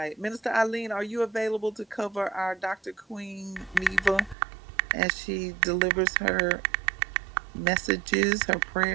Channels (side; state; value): left; drops out; at 4.4 s